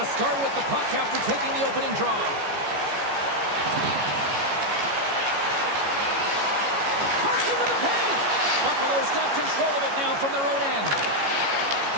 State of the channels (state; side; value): late; left; 14 ms